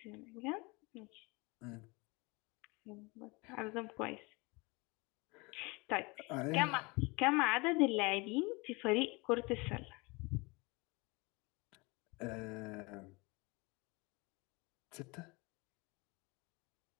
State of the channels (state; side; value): quieter; right; 26.5 dB